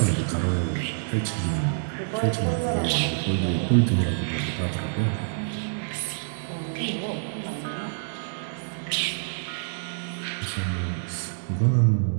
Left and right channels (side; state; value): left; silent; digital silence